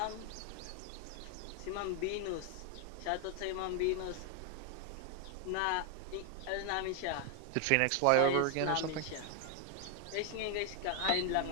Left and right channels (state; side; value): different; both; correlation 0.01